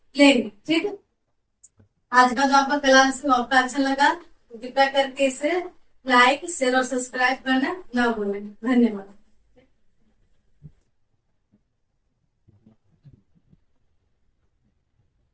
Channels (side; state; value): both; identical; correlation 1.00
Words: लेंगे। ठीक है, आज का जो आपका क्लास है आपका अच्छा लगा तो कृपया करके इसे लाइक शेयर और सब्सक्राइब करना ना भूलें। धन्यवाद।